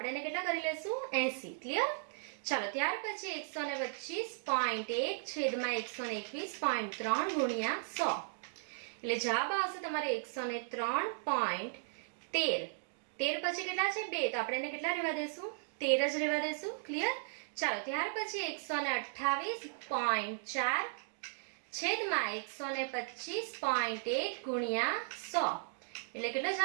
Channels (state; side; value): silent; left; digital silence